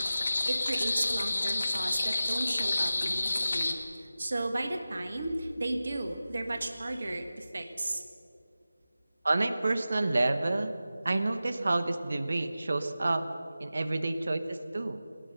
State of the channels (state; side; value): inverted; both; correlation -0.95